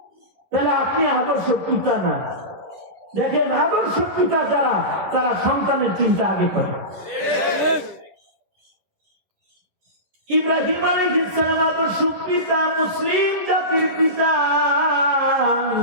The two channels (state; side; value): late; left; 11 ms